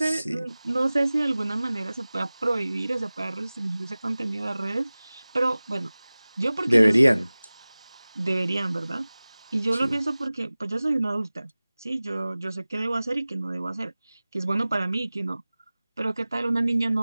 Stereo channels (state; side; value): inverted; both; correlation -0.98